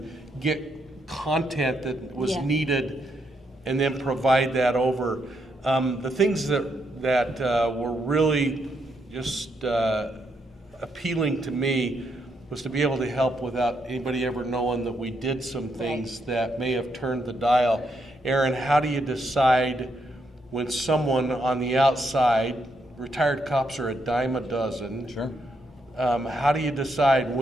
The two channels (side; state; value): both; normal; correlation 0.78